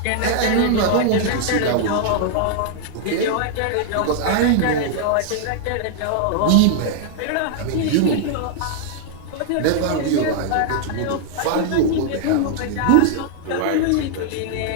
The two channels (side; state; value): both; different; correlation -0.01